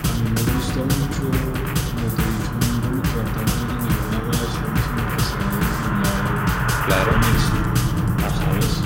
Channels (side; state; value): both; identical; correlation 1.00